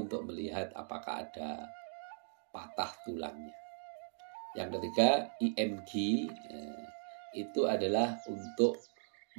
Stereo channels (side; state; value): left; silent; digital silence